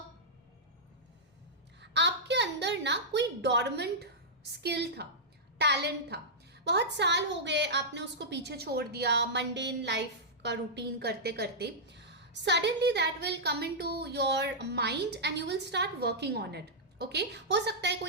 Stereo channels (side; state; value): both; normal; correlation -0.10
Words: आपके अंदर ना कोई डॉर्मेंट स्किल था, टैलेंट था, बहुत साल हो गए आपने उसको पीछे छोड़ दिया मंडेन लाइफ का रूटीन करते करते। Suddenly that will come into your mind and you will start working on it. Okay हो सकता है